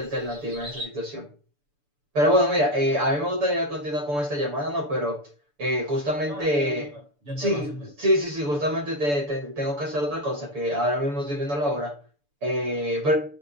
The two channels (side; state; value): left; late; 6.9 ms